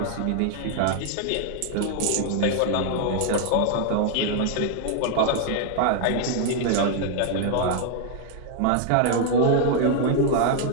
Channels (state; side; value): different; both; correlation 0.00